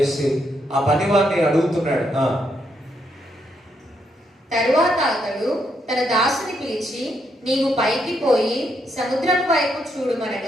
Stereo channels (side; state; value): both; normal; correlation 0.78